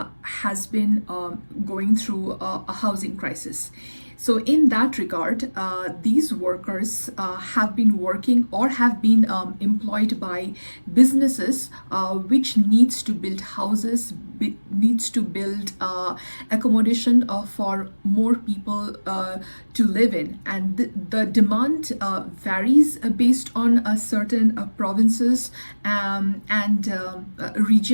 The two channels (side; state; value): both; inverted; correlation -1.00